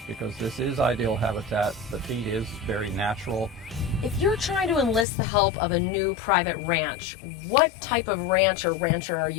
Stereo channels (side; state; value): right; drops out; at 5.1 s